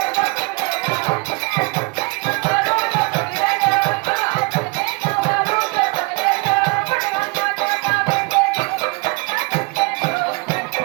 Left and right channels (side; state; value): left; quieter; 29.0 dB